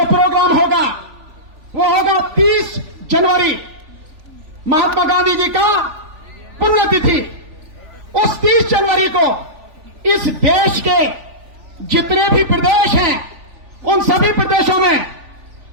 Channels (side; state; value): left; late; 3.4 ms